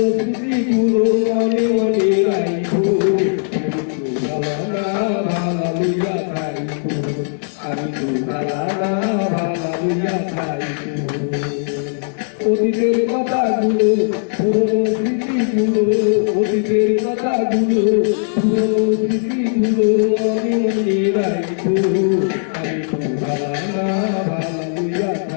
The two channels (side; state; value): right; silent; digital silence